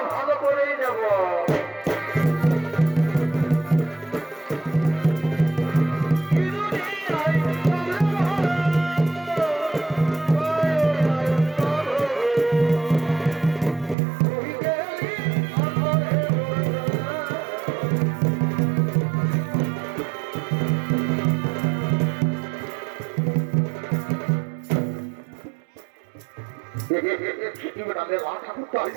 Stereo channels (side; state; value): left; drops out; at 14.0 s